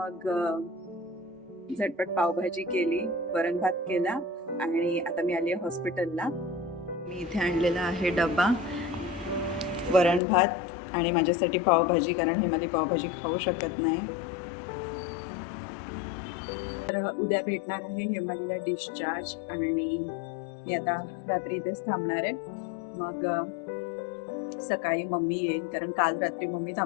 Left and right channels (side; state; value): right; drops out; at 10.2 s